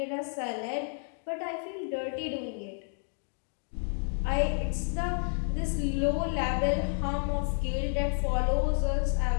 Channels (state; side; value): silent; right; 57 dB below the other